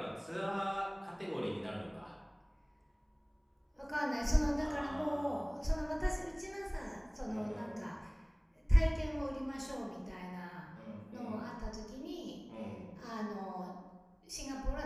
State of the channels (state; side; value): identical; both; correlation 1.00